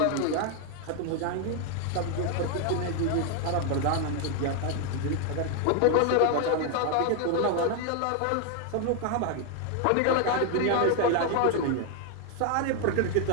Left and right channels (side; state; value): both; different; correlation 0.01